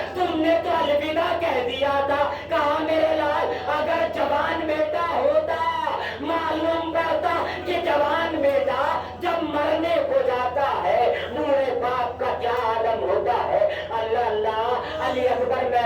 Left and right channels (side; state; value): both; identical; correlation 1.00